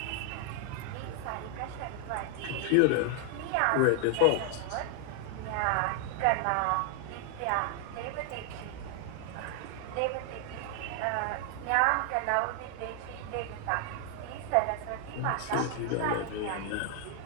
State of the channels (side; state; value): both; different; correlation 0.00